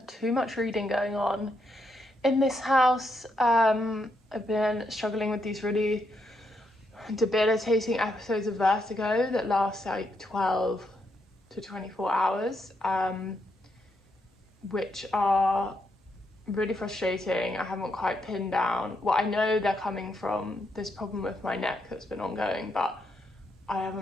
too much reading going on in this house. I've been struggling with these really debilitating episodes of vertigo that last like 12 to 24 hours, which are really frustrating. I haven't quite pinned down. Well, I know they're coming from this problem with my neck that's been ongoing, but I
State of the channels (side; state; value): both; normal; correlation 0.79